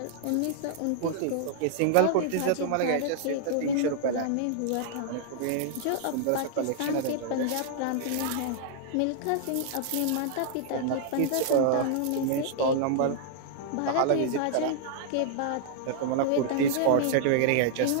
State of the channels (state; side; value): different; both; correlation -0.01